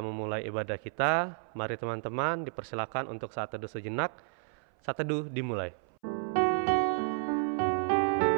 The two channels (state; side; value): silent; left; 57 dB below the other